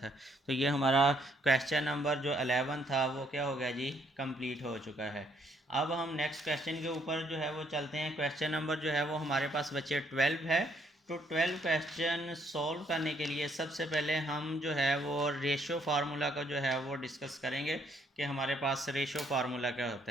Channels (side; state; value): both; normal; correlation 0.69